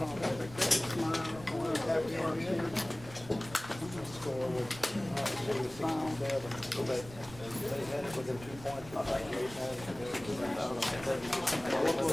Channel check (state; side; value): noise; right; rumble, 17 dB below the sound